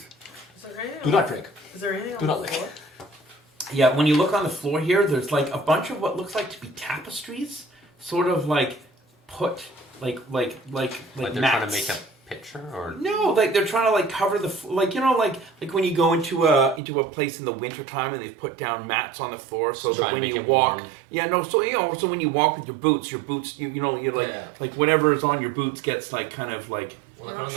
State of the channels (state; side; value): drops out; left; at 16.8 s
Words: Is there anything Do on not the- drink. Is there anything Do on not the lick. floor? Yeah, when you look on the floor here, there's like a bunch of what looks like to be tapestries, sort of like put like Like they're mats. trying to make a picture. furniture or? No, like they're trying to like cover the like when you go into a place in the wintertime and they've put down mats on the floor so Just that trying to when make you it walk, warm. so when you walk with your boots you're like Yeah. like whatever is on your boots gets like kind of like Well, We're like not one of